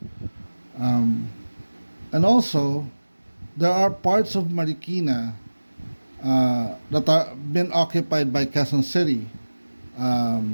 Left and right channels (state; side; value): inverted; both; correlation -1.00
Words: and also there are parts of Marikina that are been occupied by Quezon City.